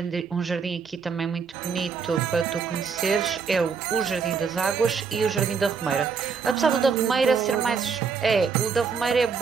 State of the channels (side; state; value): left; quieter; 5.8 dB